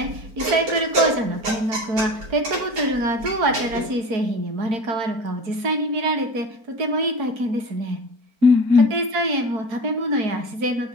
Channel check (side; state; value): left; late; 4.4 ms